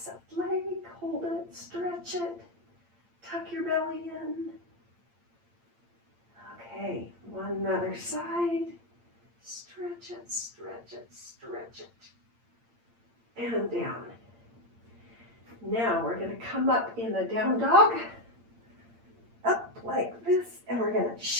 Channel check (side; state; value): left; late; 8.7 ms